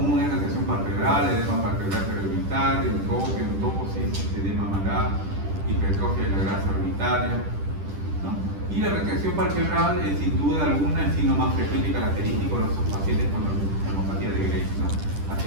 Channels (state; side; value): late; left; 10 ms